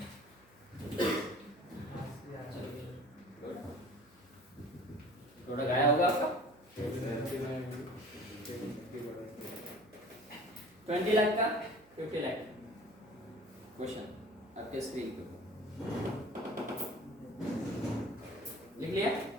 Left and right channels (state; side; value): noise; right; hum, 29 dB below the sound